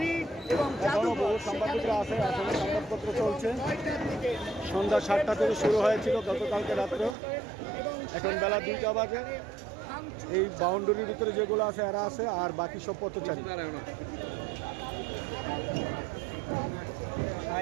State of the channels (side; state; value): left; drops out; at 7.2 s